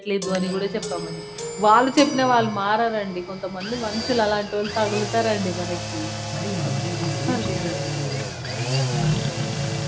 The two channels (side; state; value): both; identical; correlation 1.00